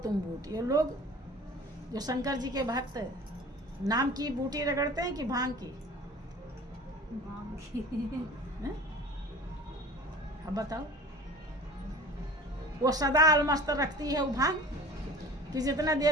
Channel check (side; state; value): both; normal; correlation 0.41